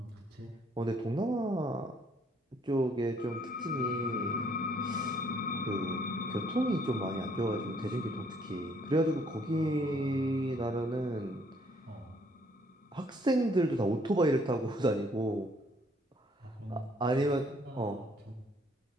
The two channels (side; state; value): both; normal; correlation 0.65